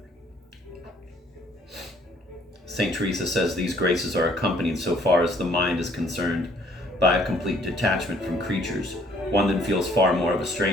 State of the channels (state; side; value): normal; both; correlation 0.61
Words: St. Teresa says these graces are accompanied, so far as the mind is concerned, by a complete detachment from creatures, one that feels far more of a